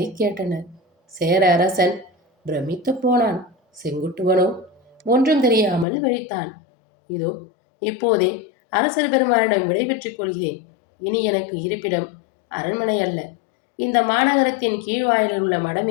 கேட்டனர். சேர அரசன் பிரமித்து போனான். செங்குட்டுவனோ ஒன்றும் தெரியாமல் விழித்தான். இதோ இப்போதே அரசர் பெருமானிடம் விடைபெற்றுக் கொள்கிறேன். இனி எனக்கு இருப்பிடம் அரண்மனை அல்ல, இந்த மாநகரத்தின் கீழ்வாயிலில் உள்ள மடம்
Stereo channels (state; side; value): drops out; right; at 5.9 s